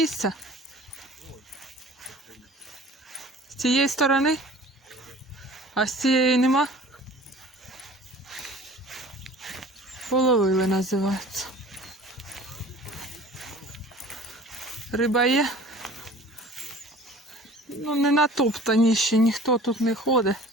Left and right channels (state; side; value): normal; both; correlation 0.45